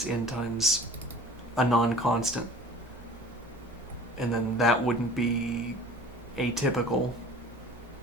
n times a non-constant. And then that wouldn't be atypical.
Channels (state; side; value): normal; both; correlation 0.44